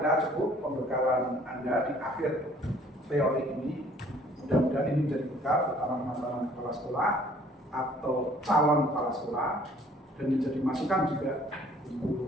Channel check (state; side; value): normal; both; correlation 0.57